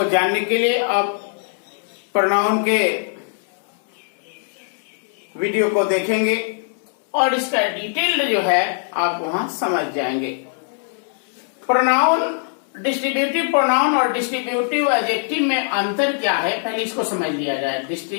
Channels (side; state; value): right; silent; 65 dB below the other